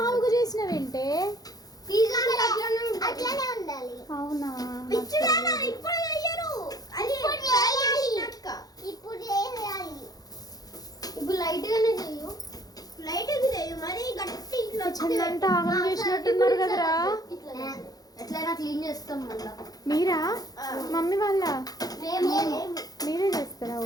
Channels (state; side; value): late; right; 0.18 ms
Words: చేసినవేంటే? అవునా, ఇప్పుడు లైట్ గానే చెయ్యు. లైట్ చెయ్యు, మరి గట్టి చిన్నంతా ఆగం చేసినట్టున్నారు కదరా. ఎట్లయినా క్లీన్ చేస్తాం మళ్ళా. మీరా? మమ్మీ వాళ్ళ? మీరే చేస్తారా?